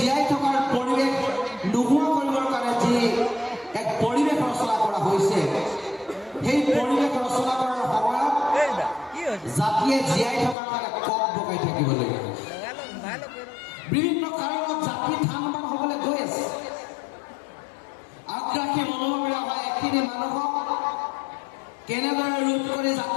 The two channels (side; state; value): right; drops out; at 10.6 s